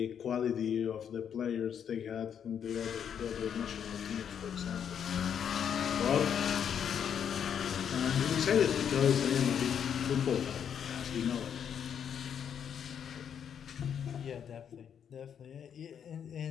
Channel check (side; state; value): right; quieter; 8.2 dB